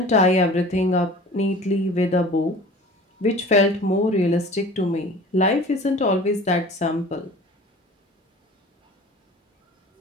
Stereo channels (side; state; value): both; normal; correlation 0.42